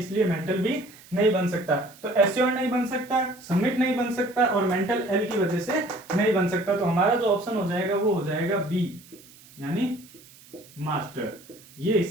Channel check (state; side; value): noise; right; hiss, 23 dB below the sound